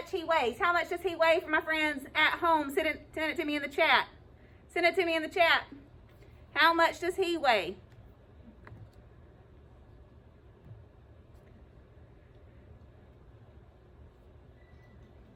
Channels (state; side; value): identical; both; correlation 1.00